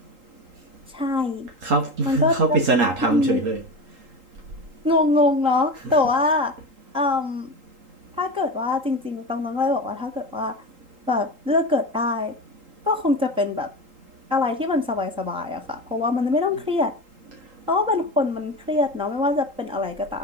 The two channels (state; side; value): late; left; 3.8 ms